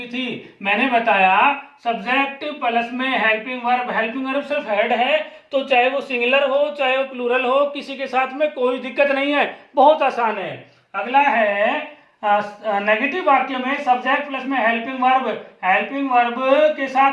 थी। मैंने बताया सब्जेक्ट प्लस में हेल्पिंग वर्ब सिर्फ हेड है, तो चाहे वो सिंगुलर हो चाहे वो प्लूरल हो, किसी के साथ में कोई दिक्कत नहीं है, बहुत आसान है। अगला है नेगेटिव वाक्य में सब्जेक्ट प्लस में हेल्पिंग वर्ब के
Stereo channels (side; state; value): both; identical; correlation 1.00